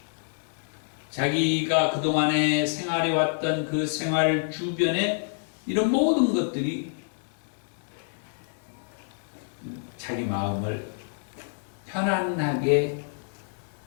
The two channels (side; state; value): right; silent; digital silence